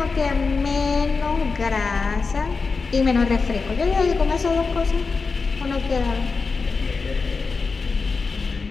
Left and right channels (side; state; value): right; quieter; 4.5 dB